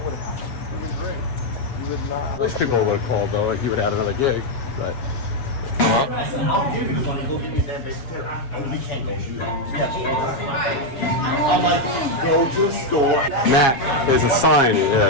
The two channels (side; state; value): right; late; 7.3 ms